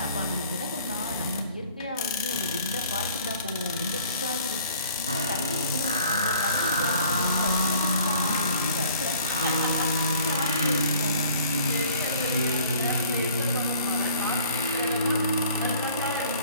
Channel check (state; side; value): inverted; both; correlation -0.53